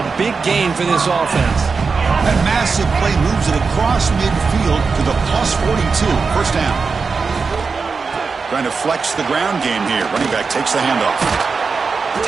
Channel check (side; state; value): left; quieter; 4.8 dB